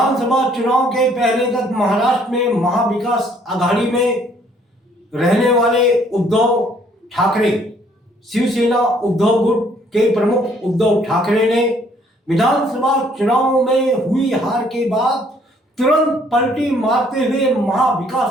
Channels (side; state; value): both; normal; correlation 0.63